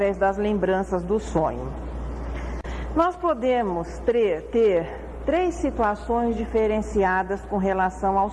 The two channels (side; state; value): both; identical; correlation 1.00